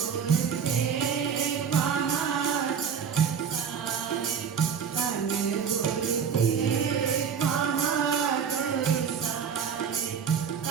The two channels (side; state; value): left; quieter; 7.1 dB